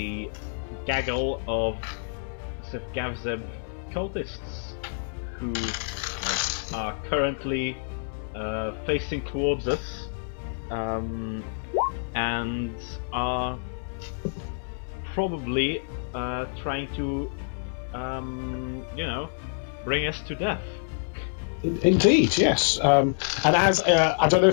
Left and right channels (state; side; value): silent; right; 60 dB below the other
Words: gaggle of Zevgavazet cultists who are currently facing towards us and are probably trying to bring us to death. Indeed, yes. And as I don't know